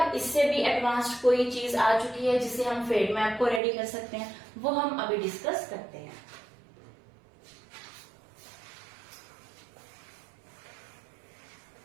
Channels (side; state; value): left; drops out; at 3.6 s